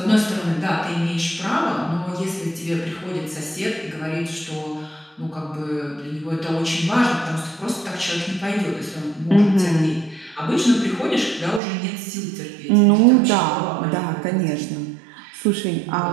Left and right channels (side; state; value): left; drops out; at 11.6 s